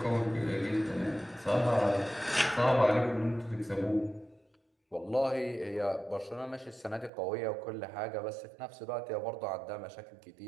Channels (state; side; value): drops out; left; at 7.1 s